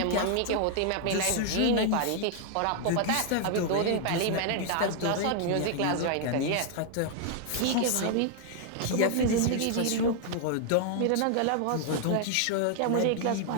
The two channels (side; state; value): both; different; correlation 0.00